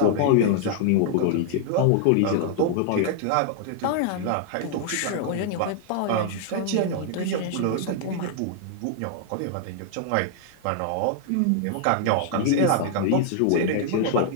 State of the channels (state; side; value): different; both; correlation 0.00